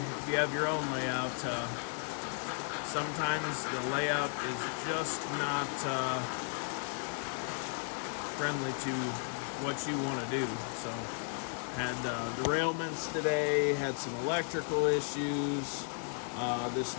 if you have your own layout, sometimes the layout is just not friendly to what you want to do. So, had derailments today, had some electrical issues. This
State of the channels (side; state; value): right; silent; 55 dB below the other